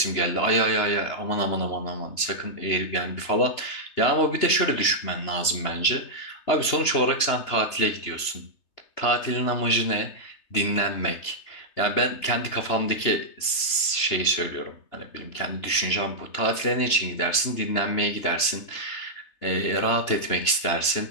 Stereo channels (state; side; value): late; right; 3.3 ms